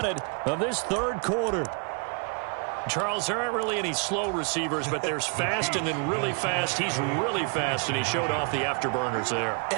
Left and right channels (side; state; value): left; quieter; 37.7 dB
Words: of this third quarter. Charles, there aren't really any slow receivers, but there's fast and then really fast. He's really fast, and he showed off the afterburners there.